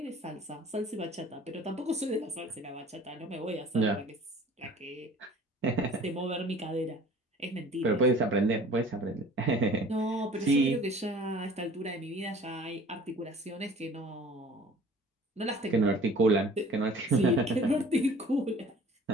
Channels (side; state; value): both; normal; correlation 0.48